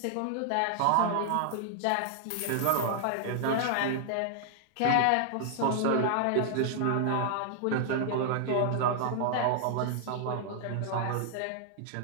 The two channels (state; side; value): different; both; correlation 0.00